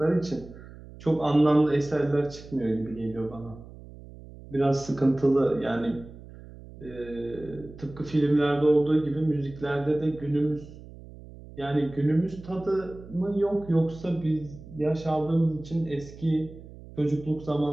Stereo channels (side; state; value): right; noise; hum, 17 dB below the sound